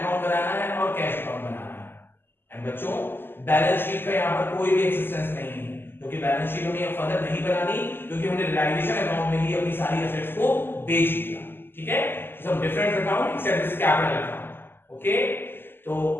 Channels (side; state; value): right; late; 0.10 ms